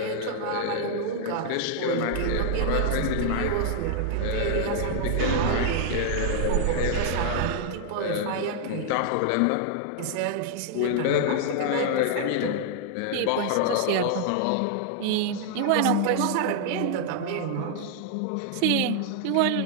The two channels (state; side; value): different; both; correlation -0.01